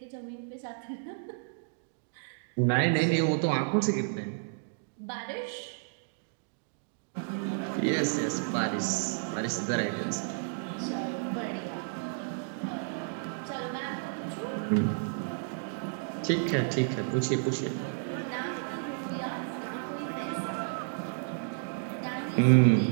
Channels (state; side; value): silent; left; digital silence